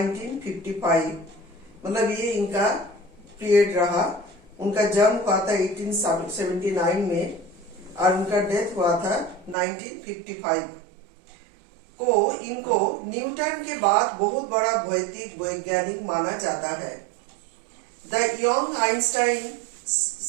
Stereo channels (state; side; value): drops out; left; at 9.6 s